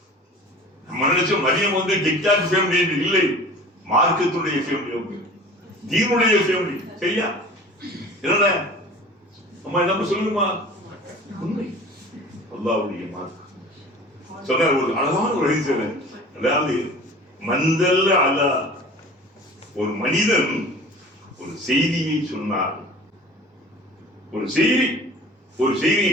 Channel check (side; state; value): both; normal; correlation 0.42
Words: நம்ம நினைச்சோம் மதியம் வந்து டிக்டாக் ஃபேமிலி என்று இல்லை, மார்க்கத்துடைய ஃபேமிலி, தீனுடைய ஃபேமிலி. சரியா? என்ன அம்மா நம்ம சொல்லுமா? உண்மை. அல்லாஹ்வுடைய மார்க்கம் சொன்னார். ஒரு அழகான ஒரு ஹதீஸ். அதாவது மந்தல்ல அலா, ஒரு மனிதன் ஒரு செய்தியை சொன்னார், ஒரு செய்தியை